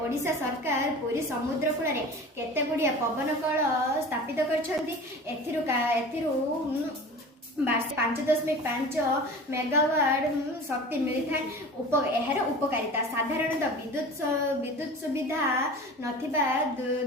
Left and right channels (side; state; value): both; normal; correlation 0.37